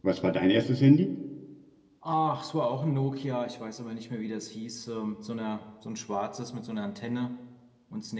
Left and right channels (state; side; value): identical; both; correlation 1.00